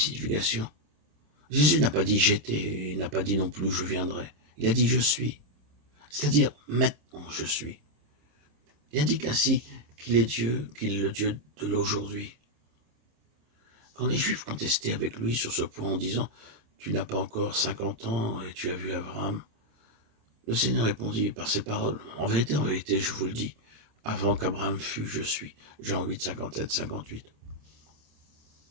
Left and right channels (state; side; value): late; left; 26 ms